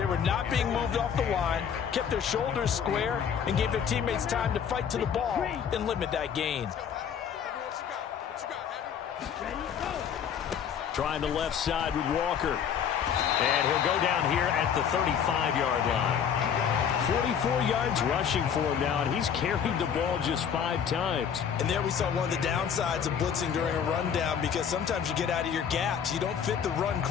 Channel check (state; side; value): quieter; right; 7.9 dB